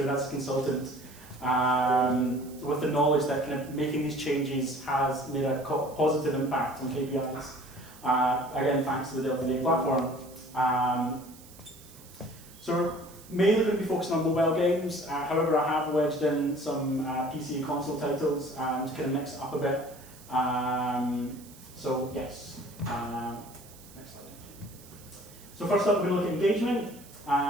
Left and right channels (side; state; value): right; noise; hiss, 21 dB below the sound